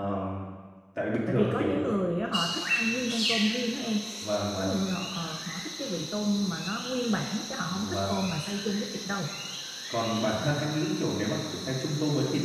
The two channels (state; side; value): identical; both; correlation 1.00